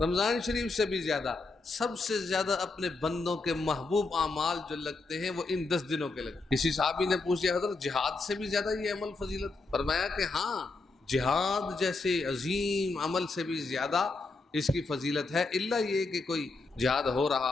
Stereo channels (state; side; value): quieter; right; 3.6 dB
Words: شریف سے بھی زیادہ، سب سے زیادہ اپنے بندوں کے محبوب اعمال جو لگتے ہیں وہ ان 10 دنوں کے لگتے ہیں۔ کسی صحابی نے پوچھا، حضرت جہاد سے بھی زیادہ یہ عمل فضیلت؟ فرمایا کہ ہاں، جہاد جیسے عظیم عمل سے بھی زیادہ اس کی فضیلت ہے، الا یہ کہ کوئی جہاد ہو